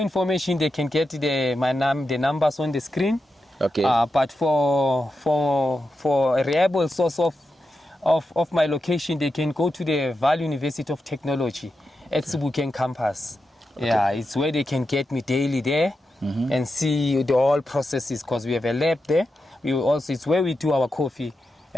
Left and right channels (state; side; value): normal; both; correlation 0.89